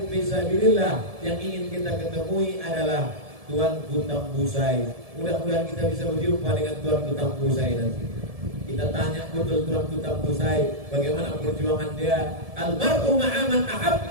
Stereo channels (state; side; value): late; left; 1.7 ms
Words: fisabilillah yang ingin kita ketemui adalah Tuanku Tambusai. Mudah-mudahan kita bisa berjumpa dengan Tuanku Tambusai nanti. Kita tanya betul Tuanku Tambusai bagaimana perjuangan dia. Almarhum ma'aman